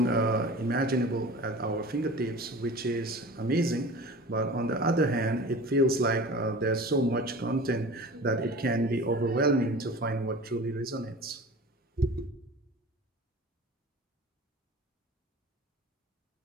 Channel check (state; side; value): normal; both; correlation 0.38